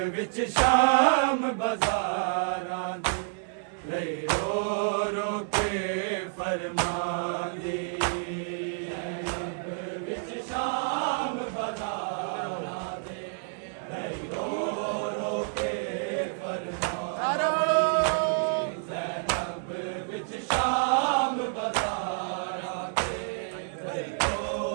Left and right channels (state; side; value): silent; left; digital silence